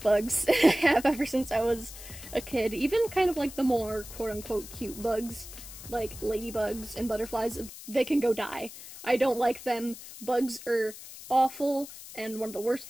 bugs. I have ever since I was a kid. Even kind of like the more quote-unquote cute bugs, like ladybugs and butterflies, they can go die. I don't like them. Bugs are awful and one of the worst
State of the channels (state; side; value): noise; left; hiss, 14 dB below the sound